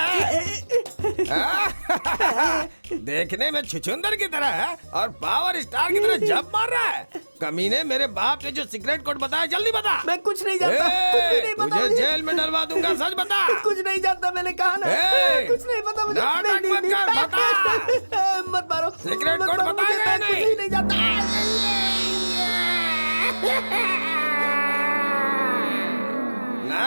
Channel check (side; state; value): both; inverted; correlation -1.00